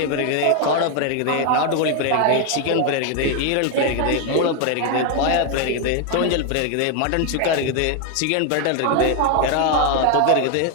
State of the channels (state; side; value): different; both; correlation 0.01